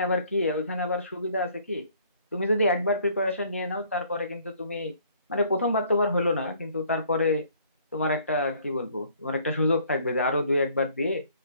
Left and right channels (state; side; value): inverted; both; correlation -0.60